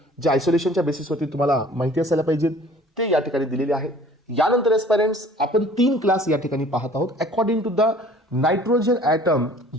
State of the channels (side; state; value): both; normal; correlation 0.51